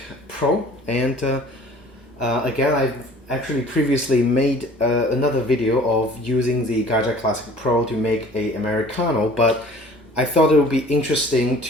Pro. Again, I've actually previously made another video of using the Gaggia Classic Pro to make a Americano, but I thought it would be interesting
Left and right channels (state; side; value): normal; both; correlation 0.49